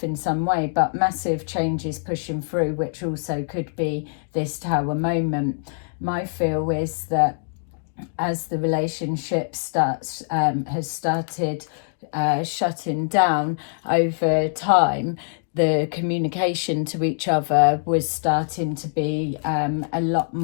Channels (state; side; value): silent; right; digital silence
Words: in some way, but massive changes pushing through, which also could be this Tower moment. My feel is that as the relationship has started shutting down over time, the communication to each other was starting to be a lot